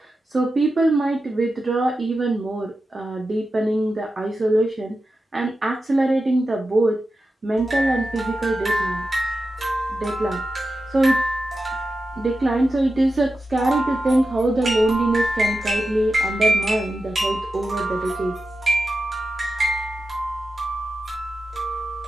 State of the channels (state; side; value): normal; both; correlation 0.91